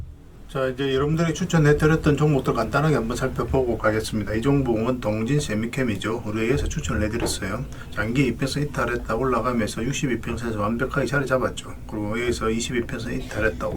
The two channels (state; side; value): identical; both; correlation 1.00